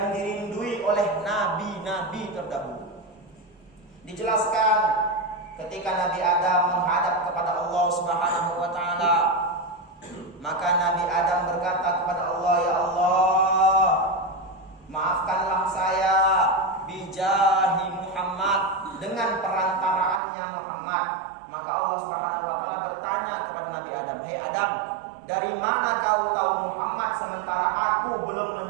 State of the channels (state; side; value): drops out; left; at 20.2 s